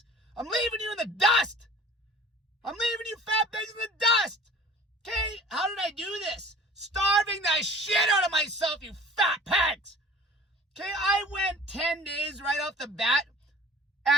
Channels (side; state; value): both; normal; correlation 0.47